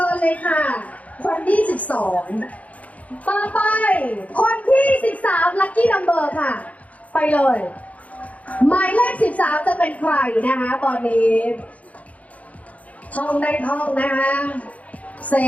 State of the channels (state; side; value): late; right; 0.069 ms